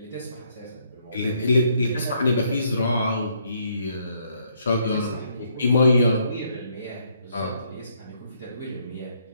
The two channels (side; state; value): both; inverted; correlation -0.71